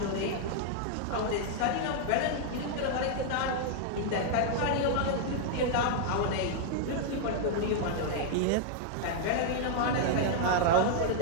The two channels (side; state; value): both; different; correlation -0.01